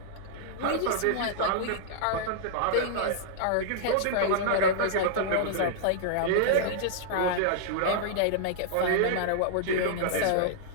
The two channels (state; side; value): different; both; correlation -0.01